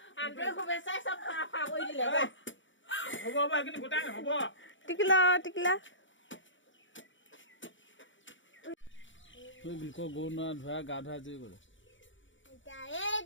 শুভেচ্ছাই চব ফা কৰি দিলে হ'ব টিকিলা টিকিলা গৰু নোৱা ধোৱা গা ধোৱা যি কৰে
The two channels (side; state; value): right; late; 0.55 ms